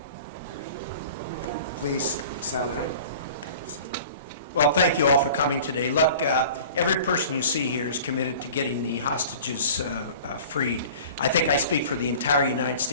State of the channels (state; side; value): inverted; both; correlation -0.43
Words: Please, Senator. Okay. Well, thank you all for coming today. Look, every person you see here is committed to getting the hostages freed. I think I speak for the entire United